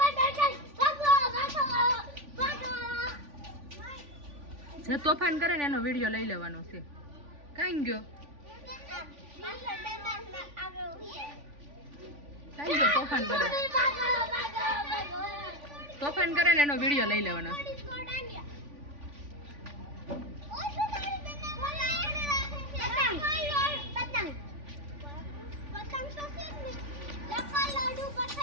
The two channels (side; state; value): left; late; 3.5 ms